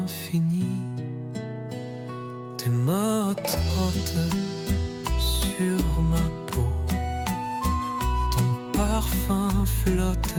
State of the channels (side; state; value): both; identical; correlation 1.00